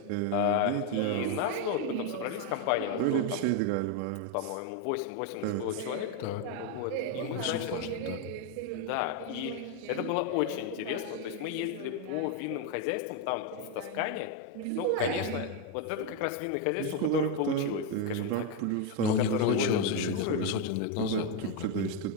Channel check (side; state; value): both; different; correlation 0.02